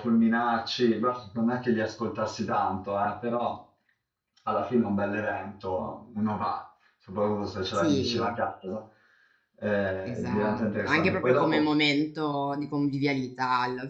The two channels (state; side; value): identical; both; correlation 1.00